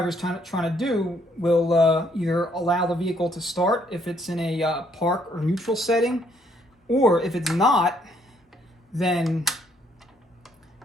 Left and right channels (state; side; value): normal; both; correlation 0.68